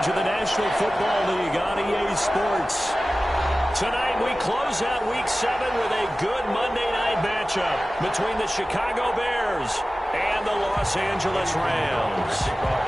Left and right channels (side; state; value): both; normal; correlation 0.96